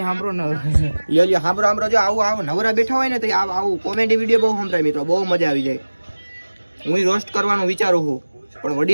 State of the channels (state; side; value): inverted; both; correlation -1.00